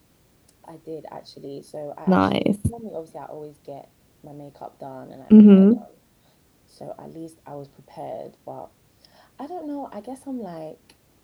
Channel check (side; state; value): both; identical; correlation 1.00